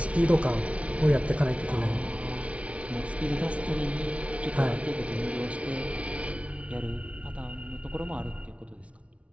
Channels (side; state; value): left; late; 0.063 ms